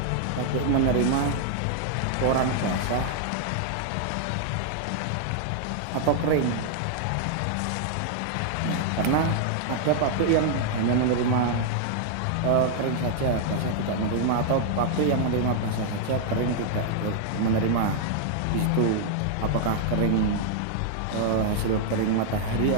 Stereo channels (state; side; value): different; both; correlation -0.01